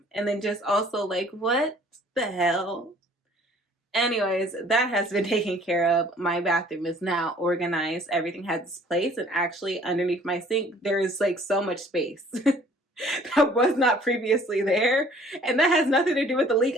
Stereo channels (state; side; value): normal; both; correlation 0.55